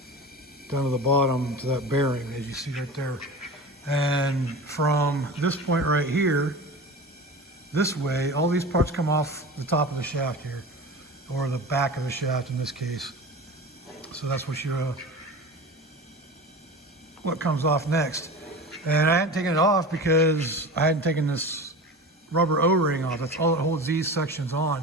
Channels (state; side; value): normal; both; correlation 0.32